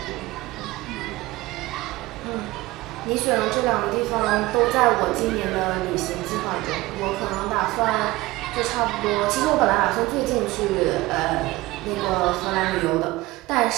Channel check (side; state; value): left; quieter; 19.6 dB